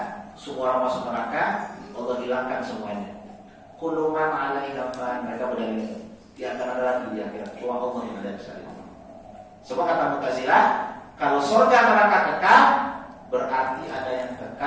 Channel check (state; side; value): identical; both; correlation 1.00